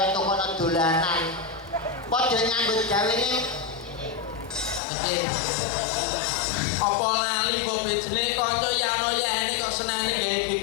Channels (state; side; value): drops out; right; at 4.8 s